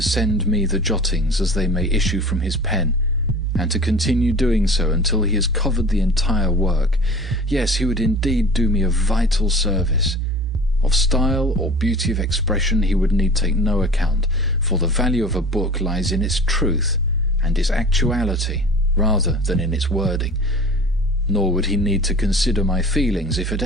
send me the jottings as they may issue from his pen, and to continue doing so until he has covered the entire work. Yes, he would indeed do me a vital service. Of style or beauty of expression he would need take no account, for the value of a book lies in its truth and its actuality rather than in its wording. Nor would he need to consider my feelings if at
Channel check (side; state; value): both; normal; correlation 0.40